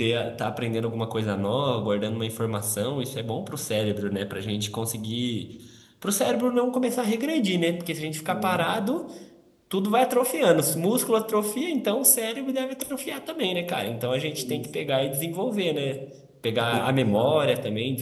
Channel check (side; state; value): both; identical; correlation 1.00